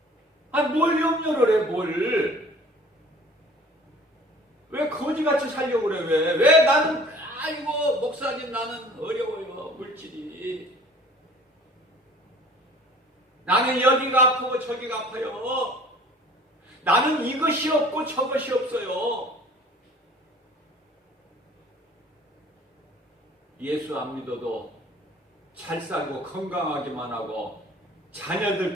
뭘 염려를 해, 뭘. 왜 거지같이 살려고 그래, 왜 나는, 목사님 나는 어려워요, 물질이. 나는 여기가 아프고 저기가 아파요. 나는 이것이 없고 저것이 없어요. 예수 안 믿어도 잘 살고 건강하기만 하고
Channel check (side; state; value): both; normal; correlation 0.49